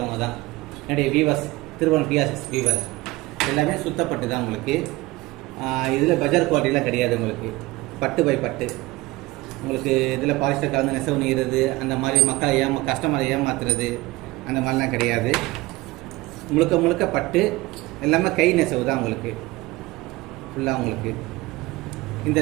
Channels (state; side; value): quieter; left; 20.3 dB